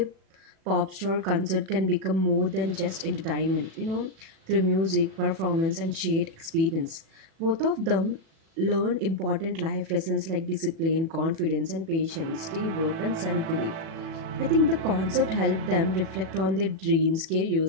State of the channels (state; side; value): late; left; 36 ms